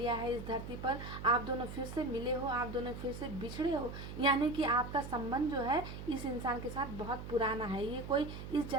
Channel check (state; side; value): noise; right; hum, 9 dB below the sound